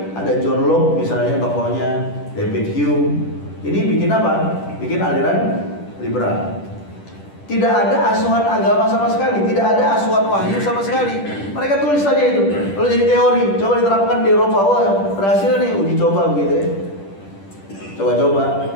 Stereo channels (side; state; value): right; late; 10 ms